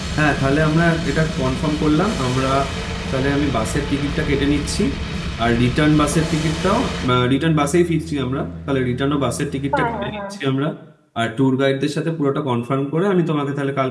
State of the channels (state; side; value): identical; both; correlation 1.00